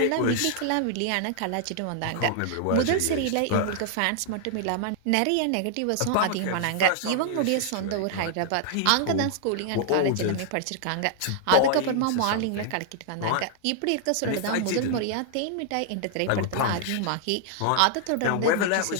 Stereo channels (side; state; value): both; different; correlation -0.01